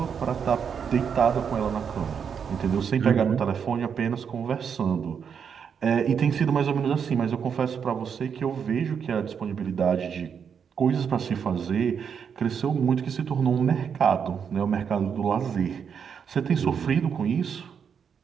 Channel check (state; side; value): quieter; left; 7.1 dB